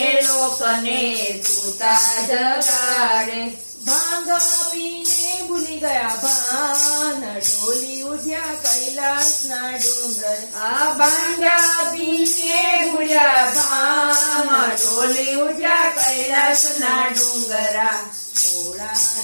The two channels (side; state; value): both; inverted; correlation -1.00